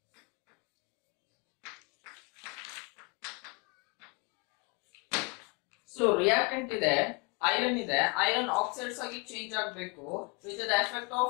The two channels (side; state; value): right; quieter; 31.7 dB